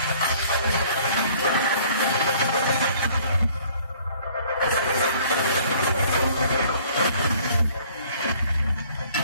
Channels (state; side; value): inverted; both; correlation -0.56